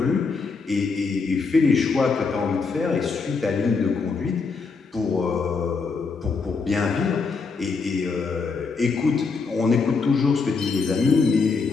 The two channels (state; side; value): quieter; right; 4.7 dB